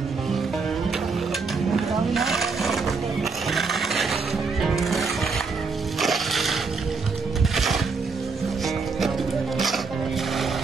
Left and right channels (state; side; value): quieter; left; 4.5 dB